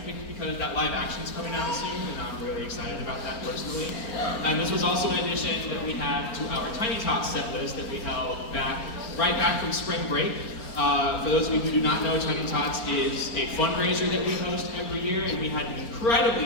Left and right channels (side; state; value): right; late; 4.4 ms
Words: because that live action's coming out soon, and I'm really excited about that personally. And this was also an addition that we had to our Tiny Tots set list that we held right back from spring break. For those of you who do not know, Tiny Tots is a fundraiser that we host every year, and we had an